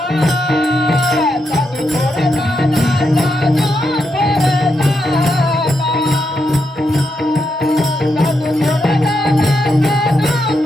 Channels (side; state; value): both; normal; correlation 0.82